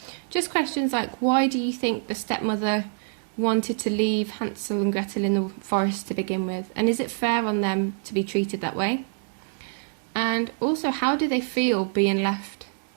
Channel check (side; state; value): left; silent; digital silence